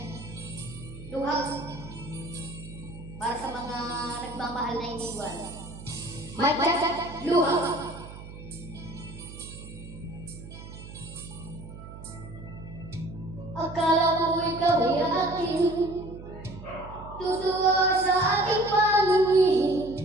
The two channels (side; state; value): right; noise; hum, 14 dB below the sound